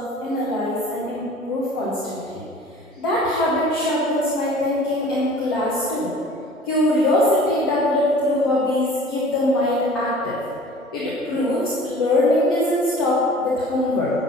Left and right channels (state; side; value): normal; both; correlation 0.46